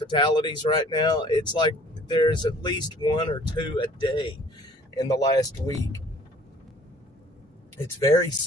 right now. It's like there's at least one or two a day in the last week. It's very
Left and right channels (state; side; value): normal; both; correlation 0.53